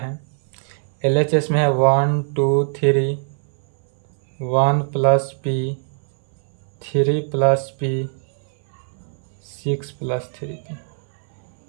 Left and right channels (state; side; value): silent; left; 60 dB below the other